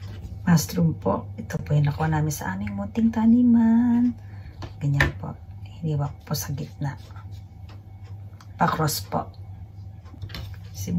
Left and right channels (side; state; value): both; identical; correlation 1.00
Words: Mushroom po. Ito po yung nakuha namin sa aming munting taniman. Ganyan po. Hiniwa po sa gitna. Pa-cross po.